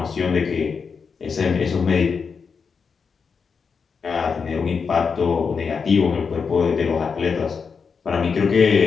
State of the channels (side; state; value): right; quieter; 5.7 dB